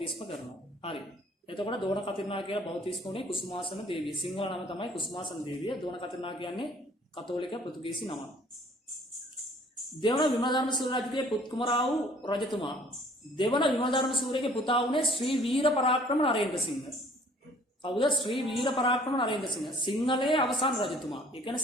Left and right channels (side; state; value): both; normal; correlation 0.55